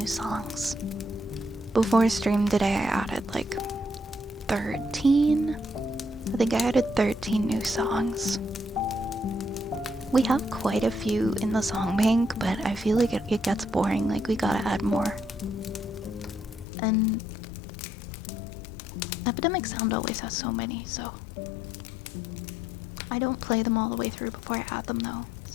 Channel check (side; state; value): right; drops out; at 16.7 s